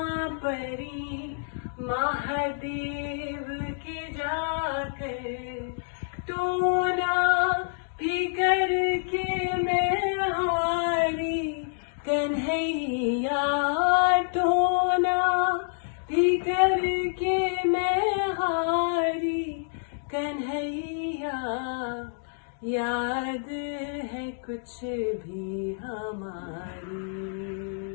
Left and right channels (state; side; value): silent; right; digital silence